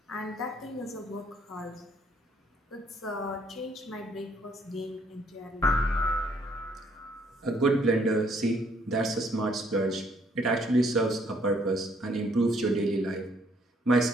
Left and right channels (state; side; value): normal; both; correlation 0.66